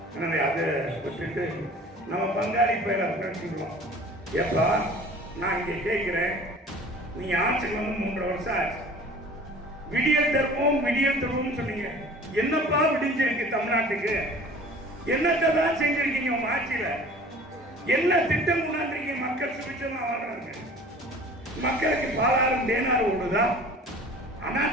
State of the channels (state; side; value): normal; both; correlation 0.45